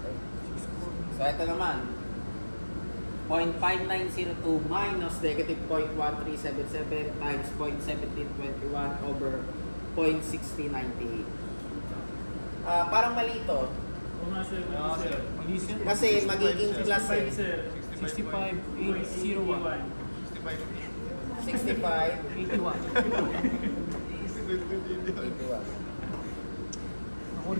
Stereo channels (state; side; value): inverted; both; correlation -1.00